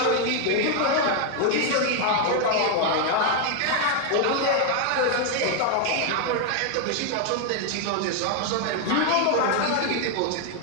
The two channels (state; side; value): different; both; correlation 0.00